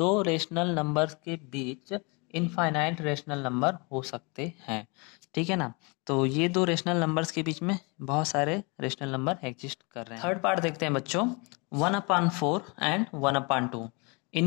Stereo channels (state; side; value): quieter; right; 30.3 dB